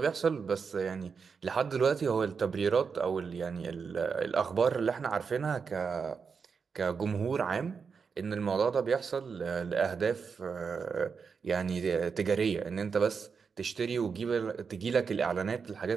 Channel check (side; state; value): left; quieter; 5.7 dB